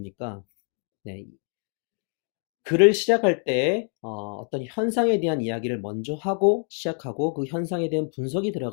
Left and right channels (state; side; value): quieter; right; 40.0 dB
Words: 네, 글을 시작할 때 어떤 현상에 대한 이야기를 먼저 하고 시작하고 그 현상에 대한 분석이